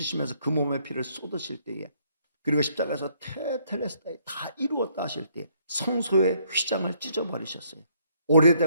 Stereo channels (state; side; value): inverted; both; correlation -0.68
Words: 그 몸의 피를 쏟으실 때에 그리고 십자가에서 테텔레스타이 다 이루었다 하실 때 성소의 휘장을 찢어버리셨어요.